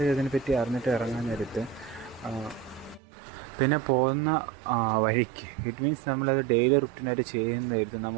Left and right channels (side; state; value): left; drops out; at 3.0 s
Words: അതിനെപ്പറ്റി അറിഞ്ഞിട്ട് ഇറങ്ങാൻ നേരത്ത് പിന്നെ പോകുന്ന വഴിക്ക് ഇറ്റ് മീൻസ് നമ്മളത് ഡെയിലി റുട്ടീനായിട്ട് ചെയ്യുന്നതായിരുന്നു